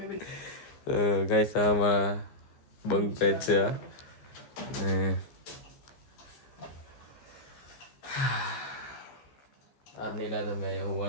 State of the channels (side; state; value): right; late; 15 ms